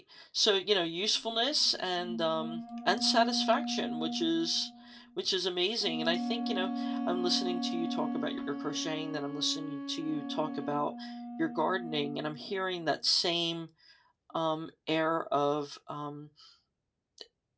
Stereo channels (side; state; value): both; identical; correlation 1.00